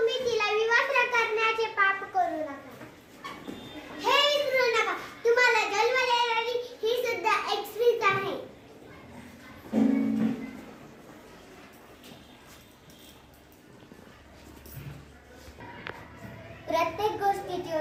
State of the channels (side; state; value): both; identical; correlation 1.00